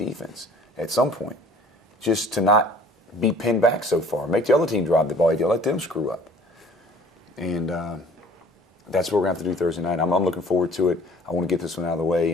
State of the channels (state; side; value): normal; both; correlation 0.51